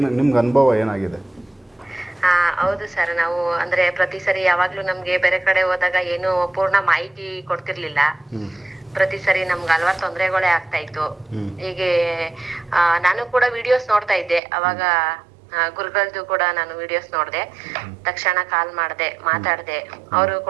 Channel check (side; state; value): left; drops out; at 14.4 s